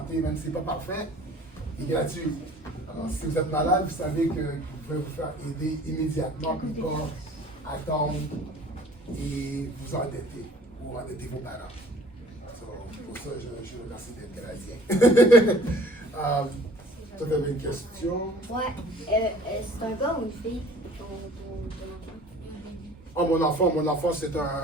même si ce n'est pas parfait, est gratuit. Alors, si vous êtes malade, vous savez que vous pouvez vous faire aider immédiatement, puis pas attendre et vous endetter ou endetter vos parents. Pour ça, je remercie d'être Canadien. Tu avais une question? Ouais. C'est un gars ou une fille, ton enfant? Mon enfant, c'est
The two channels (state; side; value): normal; both; correlation 0.49